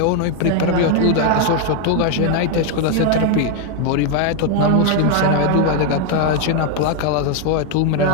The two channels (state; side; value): different; both; correlation 0.01